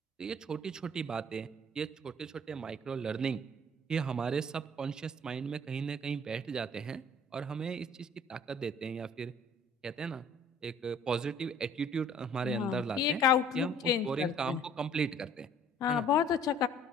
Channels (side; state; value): both; normal; correlation 0.54